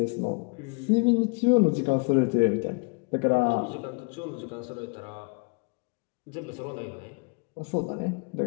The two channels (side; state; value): right; quieter; 31.0 dB